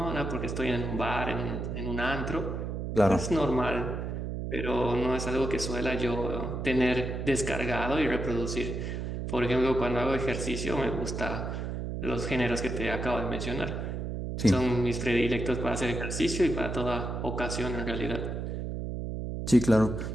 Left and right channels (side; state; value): right; noise; hum, 4 dB below the sound